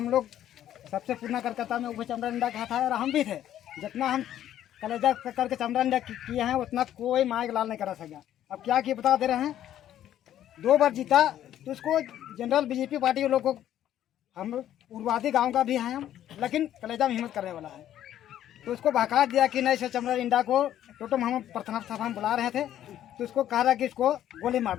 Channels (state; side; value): quieter; right; 11.6 dB